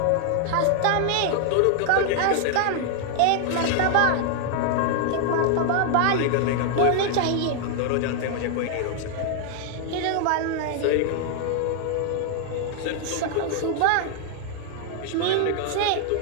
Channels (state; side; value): different; both; correlation 0.00